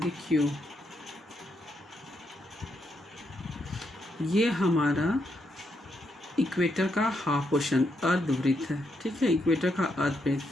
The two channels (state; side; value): normal; both; correlation 0.79